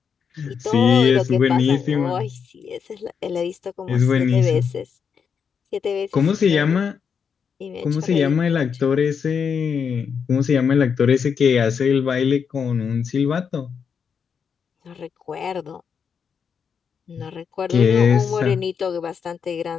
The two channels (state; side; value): quieter; right; 6.6 dB